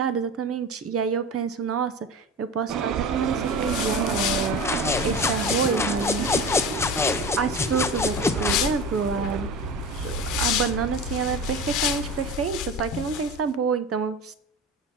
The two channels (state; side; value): normal; both; correlation 0.31